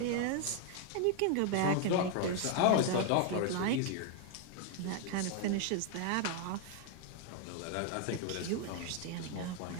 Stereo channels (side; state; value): both; different; correlation 0.00